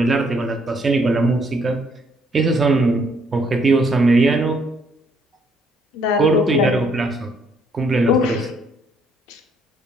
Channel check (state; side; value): normal; both; correlation 0.68